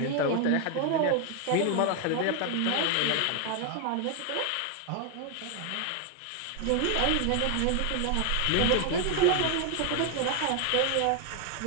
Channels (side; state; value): both; different; correlation 0.01